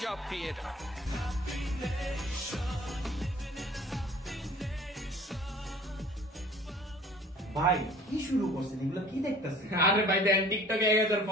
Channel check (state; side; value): normal; both; correlation 0.49